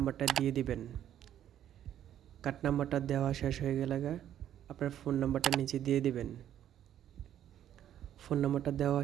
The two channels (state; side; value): quieter; left; 10.9 dB